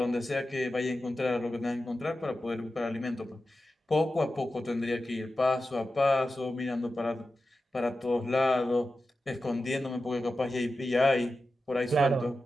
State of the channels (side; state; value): both; normal; correlation 0.92